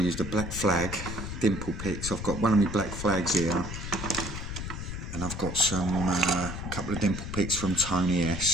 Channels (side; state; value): left; noise; rumble, 6 dB below the sound